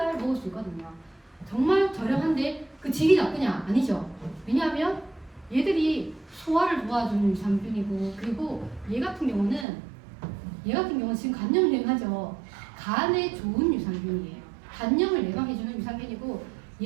먹을 수 있거든요. 정말 저렴한데 그 질이 나쁘냐? 아니죠. 왜냐하면 얘들이 소화를 도와주는 유산균이고, 그리고 얘 같은 경우는 얘 같은 경우는 지금 간염 유행하죠. 간에 좋은 유산균이에요. 간염을 예방해주는 유산균이고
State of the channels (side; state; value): left; drops out; at 9.7 s